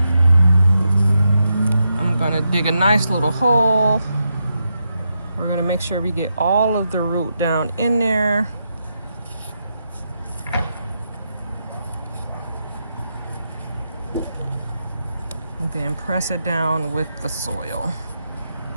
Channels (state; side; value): inverted; both; correlation -0.84